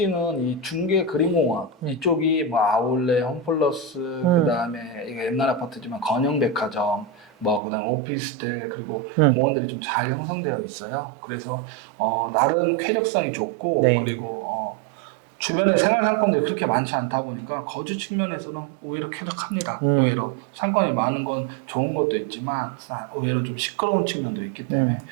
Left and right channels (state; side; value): drops out; left; at 7.6 s